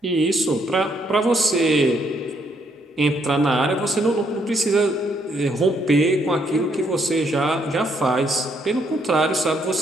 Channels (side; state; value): both; normal; correlation 0.72